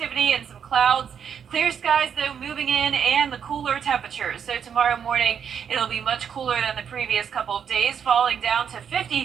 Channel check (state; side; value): quieter; left; 7.7 dB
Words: and some clouds. Clear skies, though, moving in, and the cooler temperatures. So tomorrow morning, it'll be much cooler than the previous couple of days, falling down to